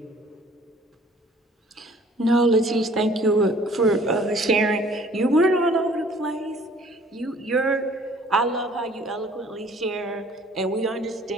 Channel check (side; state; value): both; normal; correlation 0.55